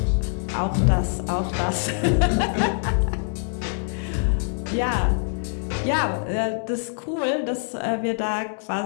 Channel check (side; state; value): right; silent; digital silence